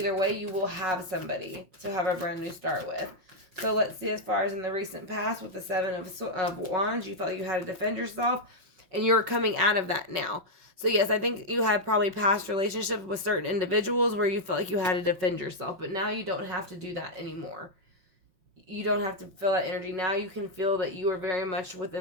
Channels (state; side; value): late; left; 5.4 ms